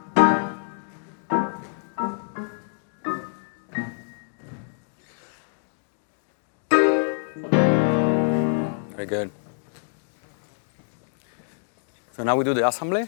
Very good. So now we do the assembly.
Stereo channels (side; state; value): right; silent; digital silence